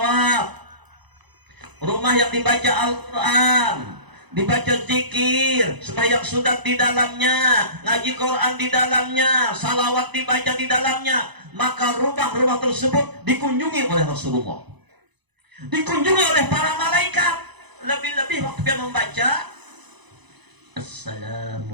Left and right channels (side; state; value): left; late; 0.99 ms